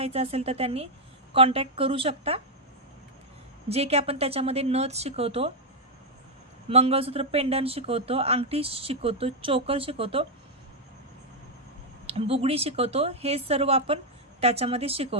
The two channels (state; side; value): normal; both; correlation -0.01